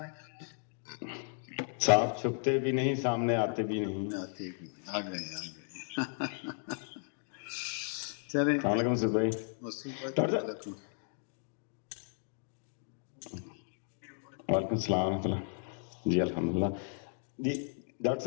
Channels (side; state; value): right; silent; 55 dB below the other